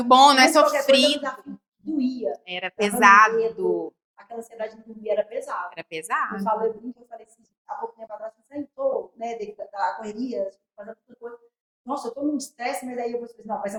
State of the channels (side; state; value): both; identical; correlation 1.00